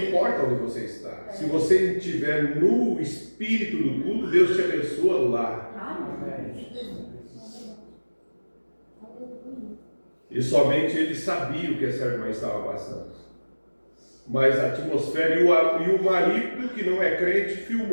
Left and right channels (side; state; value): both; inverted; correlation -1.00